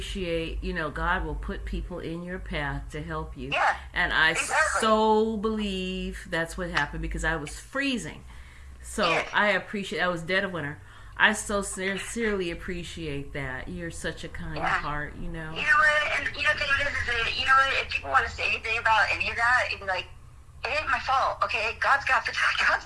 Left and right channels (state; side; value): identical; both; correlation 1.00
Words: God will put people in your path to help you. Yeah. And I so believe that's what happened because I was freezing. So I appreciate, I was dead of winter. I so sincerely appreciate that. You're such a kind heart, You know what? And you know what? If people want to say anything about any of that, it'd be like, it ain't my fault, okay? God's got the